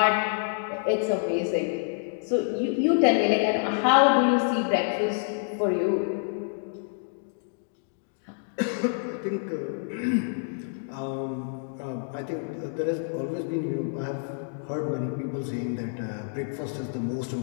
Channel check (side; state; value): right; silent; digital silence